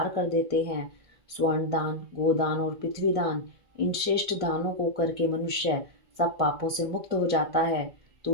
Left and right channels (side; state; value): left; late; 1.6 ms